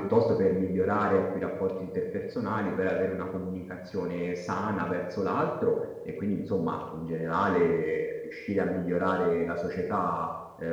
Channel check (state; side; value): identical; both; correlation 1.00